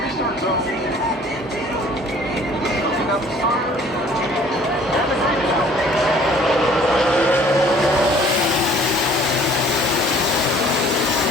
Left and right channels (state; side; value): normal; both; correlation 0.54